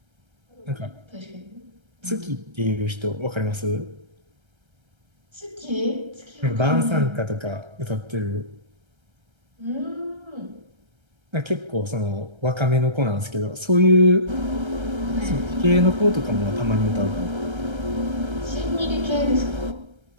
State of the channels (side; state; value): left; late; 1.3 ms